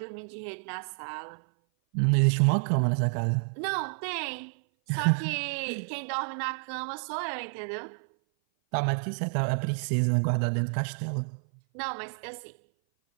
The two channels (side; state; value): left; silent; 56 dB below the other